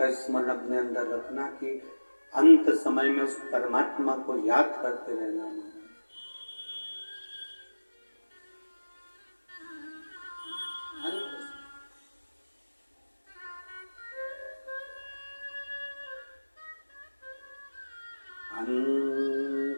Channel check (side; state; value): both; inverted; correlation -1.00